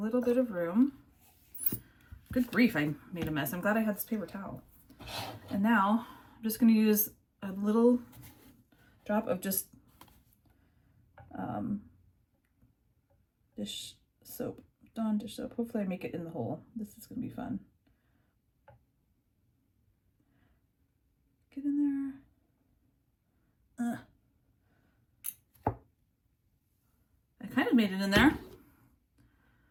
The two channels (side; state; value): both; identical; correlation 1.00